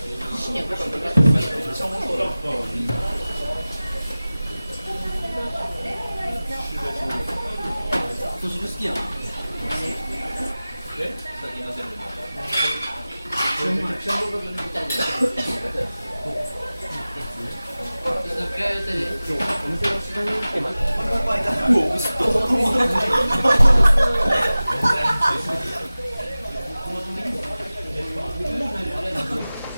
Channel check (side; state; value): both; inverted; correlation -0.97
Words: 年好きやな。先乗せる